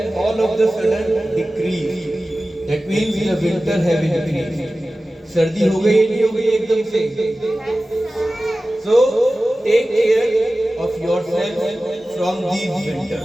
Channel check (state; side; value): normal; both; correlation 0.96